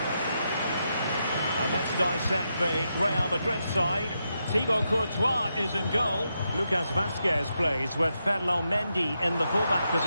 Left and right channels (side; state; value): both; inverted; correlation -0.84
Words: And let's dissect the Real Madrid side. Thibaut Courtois is in goal. Lucas Vazquez plays with Ferland Mendy in the fullback